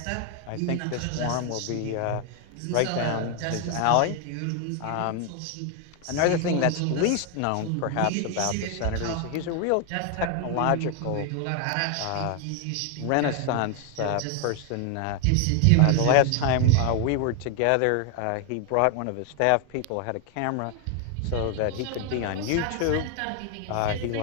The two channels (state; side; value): different; both; correlation 0.01